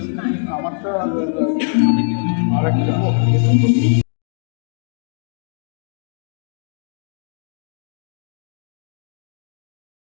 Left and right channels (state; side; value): silent; right; 65 dB below the other